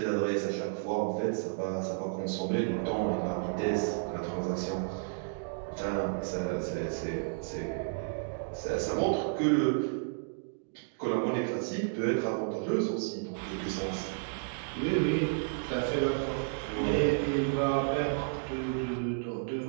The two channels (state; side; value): silent; left; digital silence